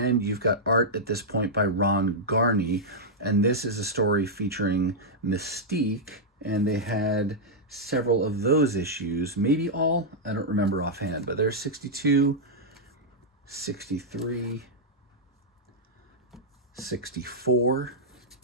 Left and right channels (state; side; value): normal; both; correlation -0.07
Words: you've got art at this point by Ron Garney, and this is a story featuring Mystique, and they had several of those issues, maybe all, I don't remember offhand, but there's 62, 63, 64,